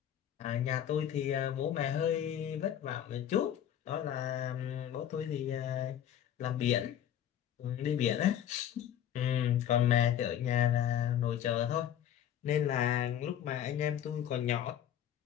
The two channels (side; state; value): right; quieter; 10.4 dB